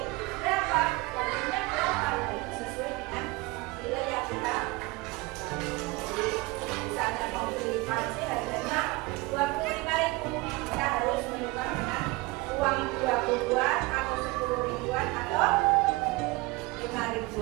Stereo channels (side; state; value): left; quieter; 23.4 dB